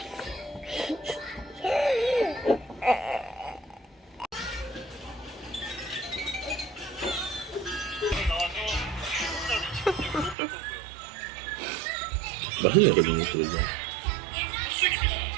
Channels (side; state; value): left; drops out; at 10.4 s